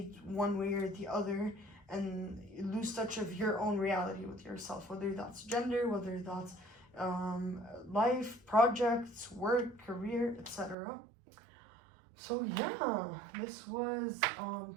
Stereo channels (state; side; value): drops out; left; at 10.8 s